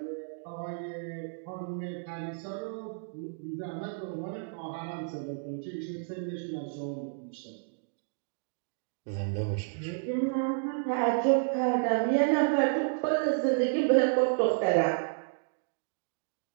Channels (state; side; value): silent; left; digital silence